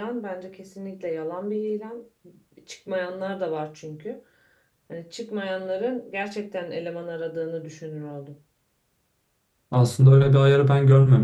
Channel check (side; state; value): both; identical; correlation 1.00